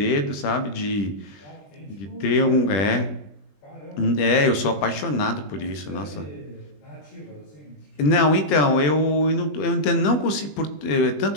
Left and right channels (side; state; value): right; late; 20 ms